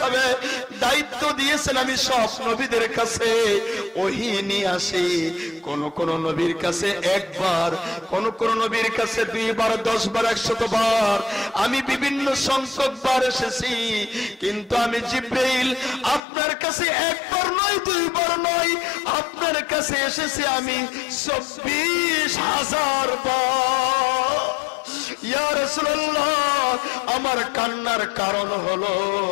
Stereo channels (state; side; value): drops out; right; at 16.2 s